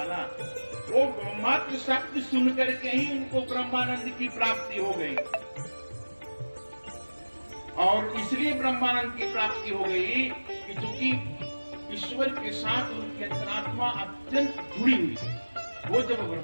वो मात्र शब्द सुन करके ही उनको ब्रह्मानंद की प्राप्ति हो गई, और इसलिए ब्रह्मानंद की प्राप्ति हो गई कि चूंकि ईश्वर के साथ उनकी अंतरात्मा अत्यंत जुड़ी हुई थी। वो जब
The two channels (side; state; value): both; inverted; correlation -1.00